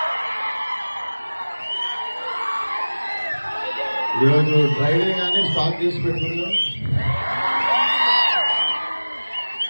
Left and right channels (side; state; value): both; inverted; correlation -1.00